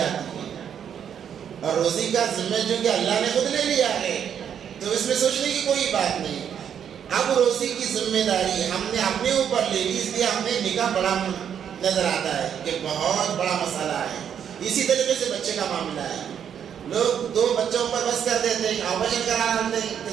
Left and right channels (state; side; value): quieter; left; 8.5 dB